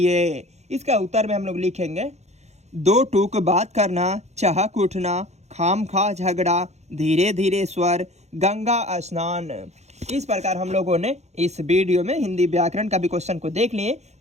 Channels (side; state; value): left; late; 0.32 ms